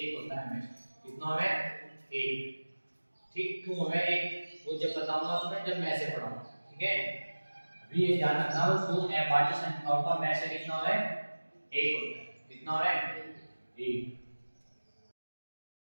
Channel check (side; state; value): both; inverted; correlation -1.00